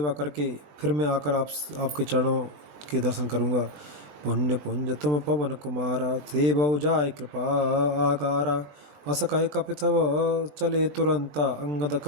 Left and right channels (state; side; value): late; left; 20 ms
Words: करके फिर मैं आकर आपके चरणों के दर्शन करूँगा। पुण्य पुंज तुम पवन कुमारा, सेवौ जाय कृपा आकारा। अस कहे कपितव चले तुरंता, अंगद